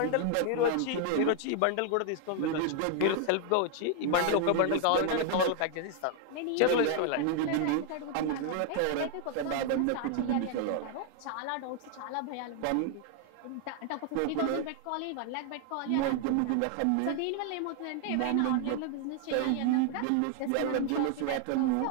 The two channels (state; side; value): different; both; correlation 0.00